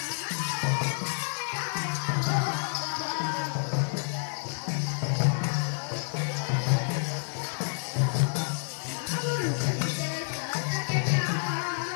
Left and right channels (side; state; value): right; silent; digital silence